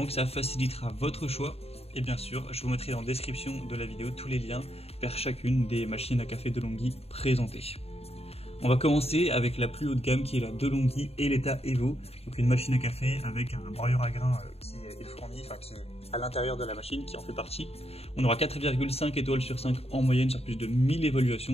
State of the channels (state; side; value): late; right; 0.29 ms